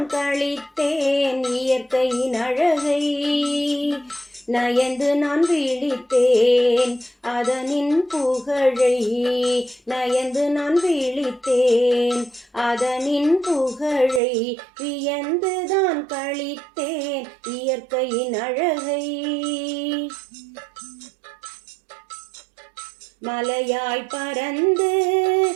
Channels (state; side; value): drops out; left; at 14.2 s